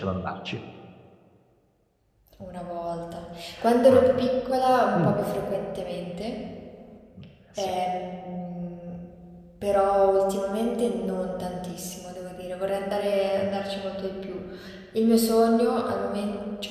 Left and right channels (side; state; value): both; identical; correlation 1.00